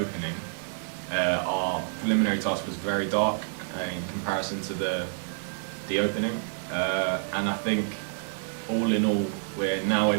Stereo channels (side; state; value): left; silent; digital silence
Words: Our preliminary task was very dark in comparison to the opening, and I think all in all we're now